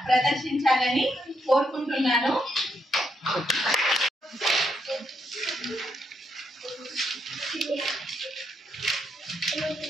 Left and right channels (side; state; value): both; normal; correlation 0.78